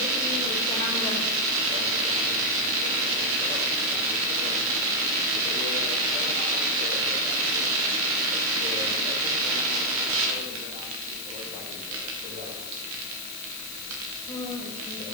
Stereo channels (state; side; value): noise; left; hiss, 10 dB below the sound